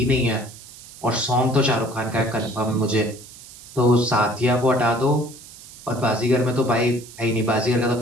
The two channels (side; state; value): right; noise; hiss, 18 dB below the sound